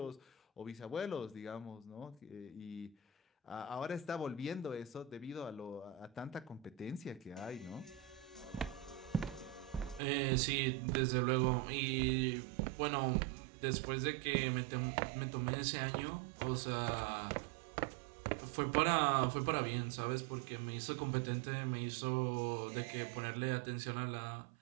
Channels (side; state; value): left; drops out; at 10.0 s